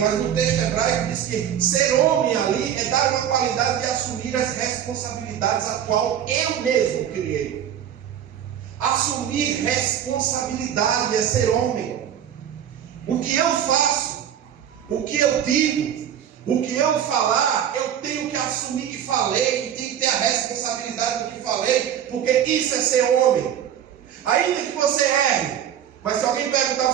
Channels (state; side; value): quieter; left; 9.6 dB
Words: no texto hebraico diz que ser homem ali é dar uma qualidade de assumir as responsabilidades a qual eu mesmo criei. Assumir responsabilidade é ser homem. O que eu faço, o que eu digo, o que eu falar, eu tenho que assumir que falei, e tenho que ter a responsabilidade do que falei, porque isso é ser homem. Ainda que você erre, mas se alguém perguntar: